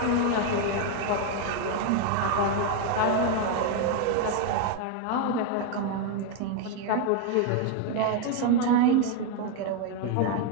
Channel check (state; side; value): different; both; correlation 0.01